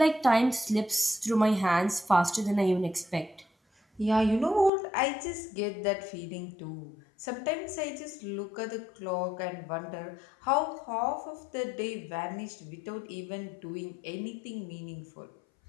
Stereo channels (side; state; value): right; drops out; at 4.7 s